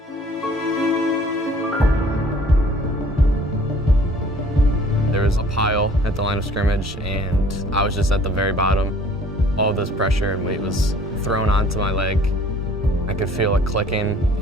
There was a pile at the line of scrimmage, and I was just at the very bottom. All this pressure and weight was thrown onto my leg. I could feel it clicking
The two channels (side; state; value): both; normal; correlation 0.53